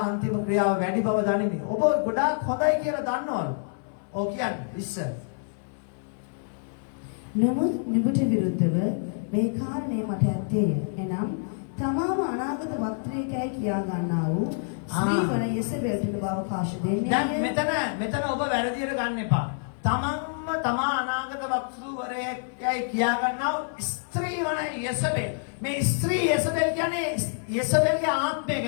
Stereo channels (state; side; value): silent; right; 60 dB below the other